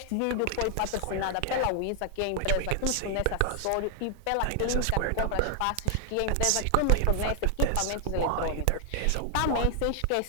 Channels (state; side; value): different; both; correlation 0.00